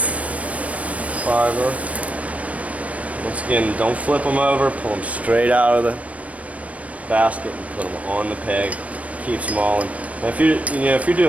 Fiber. Once again, don't flip them over, pull them straight out of the basket and put them on the peg. Keeps them all in. Now if you're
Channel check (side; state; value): left; late; 0.066 ms